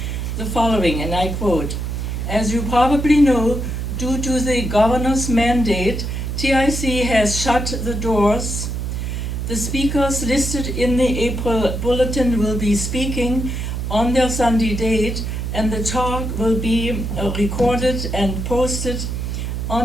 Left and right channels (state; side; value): noise; right; hum, 3 dB below the sound